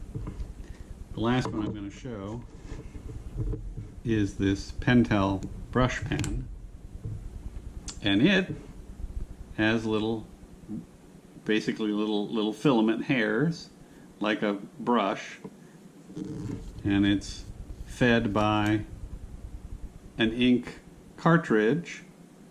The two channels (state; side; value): identical; both; correlation 1.00